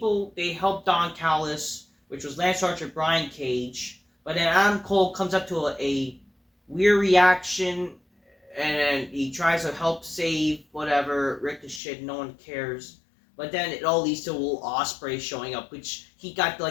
they helped Don Callis, which was Lance Archer, Brian Cage. But then Adam Cole comes up to a weird reaction, and he tries to help save whatever Ricochet. No one cares. But then it all leads to Will Ospreay showing up, which he got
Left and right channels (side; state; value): right; drops out; at 11.8 s